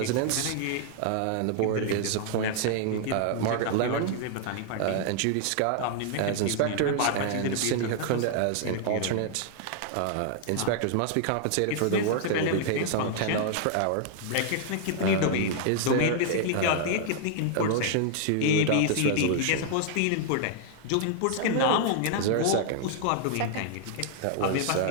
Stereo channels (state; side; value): different; both; correlation -0.01